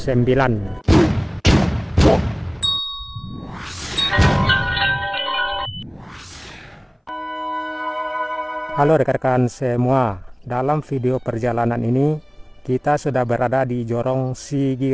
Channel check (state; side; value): identical; both; correlation 1.00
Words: Halo rekan-rekan semua, dalam video perjalanan ini kita sudah berada di Jorong